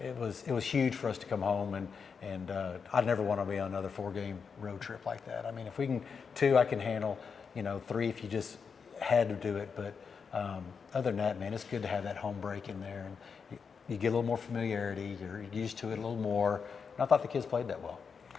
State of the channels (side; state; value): right; quieter; 5.9 dB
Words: it was huge for us to come home, and I'd never want to be on another 4-game road trip like that. I mean, if we can 2, I can handle. 3 if you just had to do it. But Other than that, man, it's good to have that home break in there, and you get a little more familiarity. You're used to it a little more. And I thought the kids played that well.